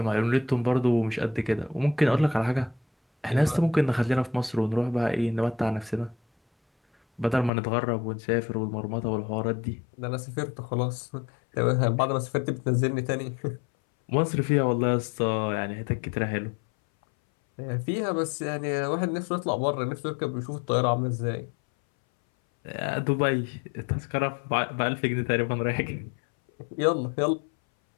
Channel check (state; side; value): drops out; right; at 7.5 s